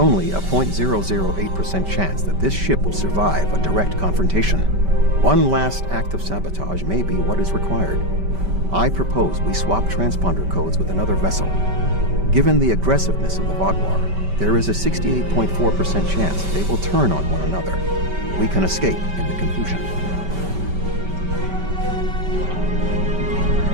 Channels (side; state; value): left; late; 5.2 ms